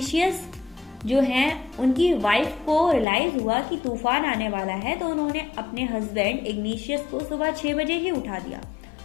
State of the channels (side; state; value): right; drops out; at 3.1 s